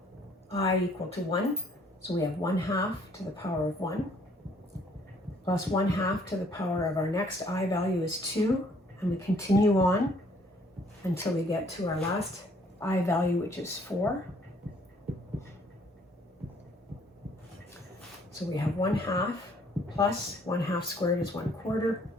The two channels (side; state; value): both; normal; correlation 0.62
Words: I equal to 1. So we have 1/2 to the power of 1 plus 1/2 to the power of our next I value is 2. And we continue on until we get to our last I value, which is 4. So we have 1/2 plus 1/2 squared is 1/4